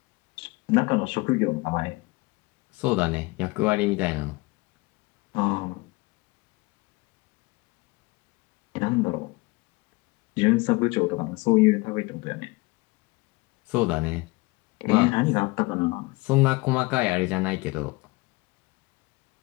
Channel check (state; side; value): quieter; right; 23.9 dB